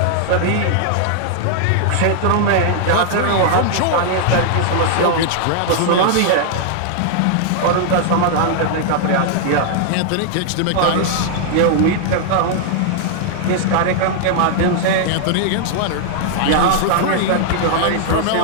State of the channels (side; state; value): both; different; correlation 0.00